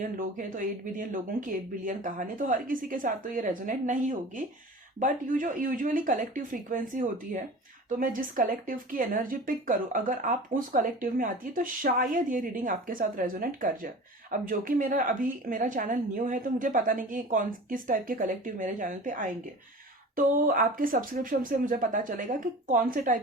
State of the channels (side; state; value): both; normal; correlation 0.38